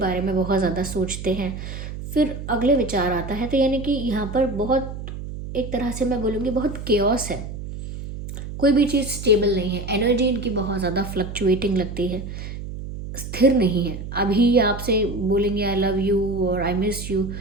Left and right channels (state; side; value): noise; right; hum, 9 dB below the sound